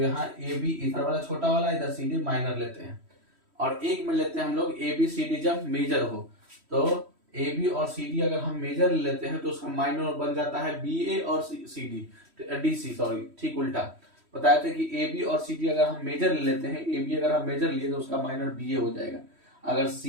यहाँ ए बी इधर वाला छोटा वाला, इधर सी डी माइनर लेते हैं। और एक में लेते हैं हम लोग ए बी सी डी जब मेजर हो, तो ए बी और सी डी अगर हम मेजर लेते हैं तो उसका माइनर बन जाता है बी ए और C D D C, sorry ठीक उल्टा बताए थे कि ए बी और सी डी अगर हम मेजर ले लेते हैं, ए बी अगर हम मेजर लिए तो उसका माइनर बी ए हो जाएगा। अगर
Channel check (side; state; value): left; late; 3.1 ms